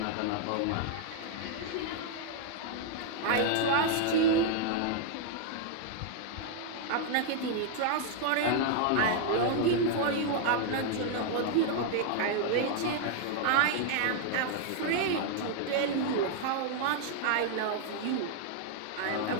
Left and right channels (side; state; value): both; different; correlation 0.00